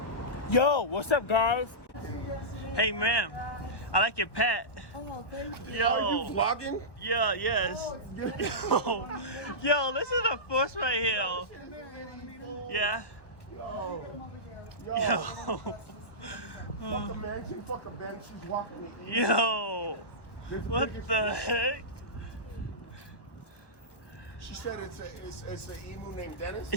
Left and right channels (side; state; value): right; late; 1.1 ms